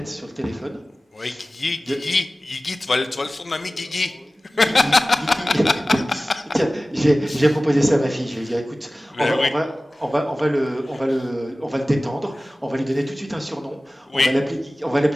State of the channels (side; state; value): both; normal; correlation 0.97